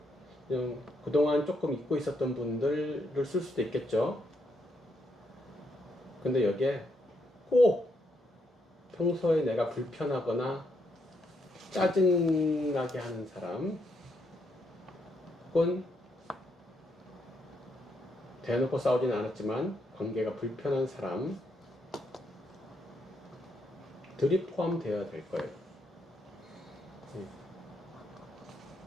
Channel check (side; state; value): both; normal; correlation 0.77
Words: 그냥 그동안 조금 잊고 있었던 분들을 쓸 수도 있겠죠. 근데 여기에 꼭 평소에 내가 불편하거나 짜증나게 하는 사람, 혹은 대놓고 싸우지는 않았지만 관계가 불편한 사람들이 포함되어야 될 거예요.